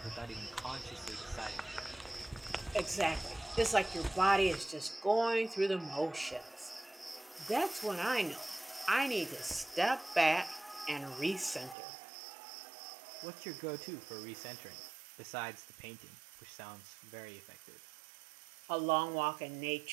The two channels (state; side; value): drops out; left; at 11.8 s